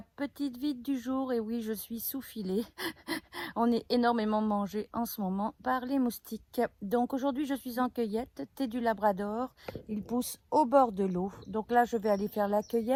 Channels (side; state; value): both; identical; correlation 1.00